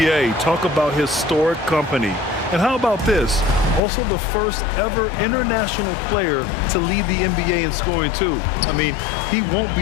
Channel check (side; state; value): right; drops out; at 3.8 s